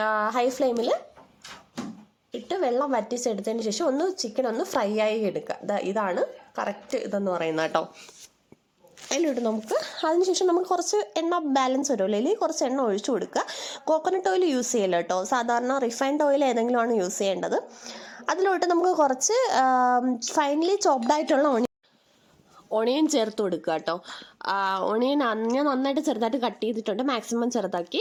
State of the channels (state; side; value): identical; both; correlation 1.00